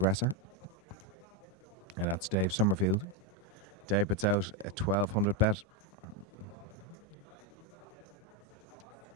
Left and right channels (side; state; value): both; normal; correlation 0.05